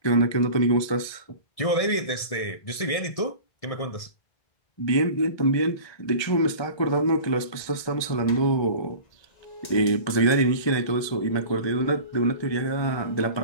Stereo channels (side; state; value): right; late; 1.3 ms